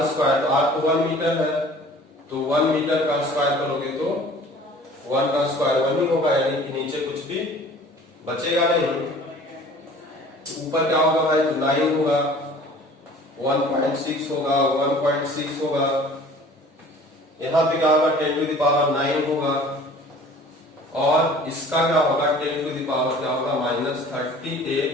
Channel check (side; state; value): both; normal; correlation 0.47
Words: स्क्वायर, तो R तो 1 मीटर है, तो 1 मीटर का स्क्वायर करोगे तो 1 का स्क्वायर 1 ही होगा, यानी कि नीचे कुछ भी बचेगा नहीं। ऊपर क्या होगा भाई, तो 9 होगा, 1.6 होगा, 1.6 होगा, यहाँ पे क्या होगा, 10⁻9 होगा, और इसका क्या होगा, 10⁻ क्या होगा,